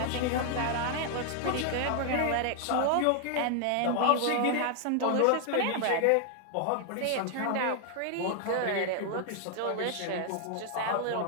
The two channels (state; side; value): different; both; correlation 0.00